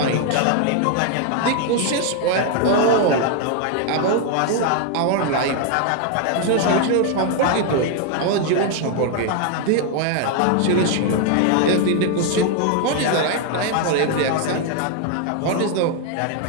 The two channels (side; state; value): both; different; correlation 0.00